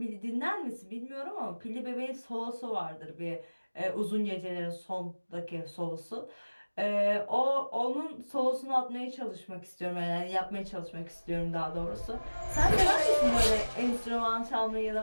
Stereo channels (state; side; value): inverted; both; correlation -1.00